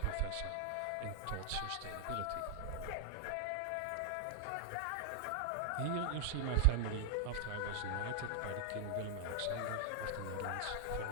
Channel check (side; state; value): both; different; correlation 0.00